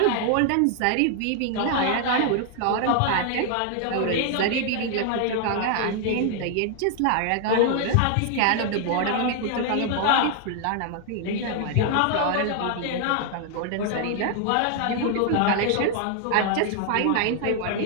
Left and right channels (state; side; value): different; both; correlation 0.00